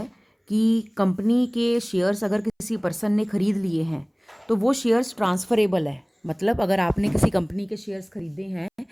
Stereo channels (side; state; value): both; identical; correlation 1.00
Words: कि कंपनी के शेयर्स अगर किसी पर्सन ने खरीद लिए हैं तो वो शेयर्स ट्रांसफरेबल है। मतलब अगर आपने किसी कंपनी के शेयर्स खरीदे हैं